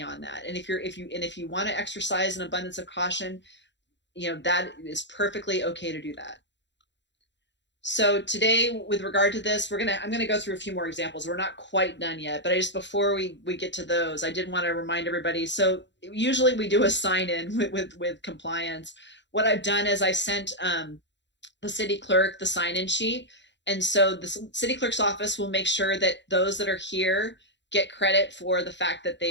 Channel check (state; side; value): late; right; 0.52 ms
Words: that. And if you want to exercise an abundance of caution, that is perfectly okay to do that. So today, with regard to this, I'm gonna go through a few more examples. We're not quite done yet, but before we get to those, I did want to remind everybody. So usually we do a sign in with compliance. What I've done is I sent the city clerk the sign in sheet, and so the city clerk's office will make sure that those that are here get credit for the fact that